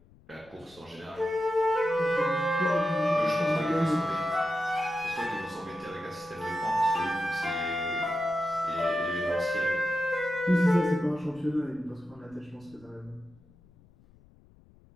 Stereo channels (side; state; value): left; noise; rumble, 27 dB below the sound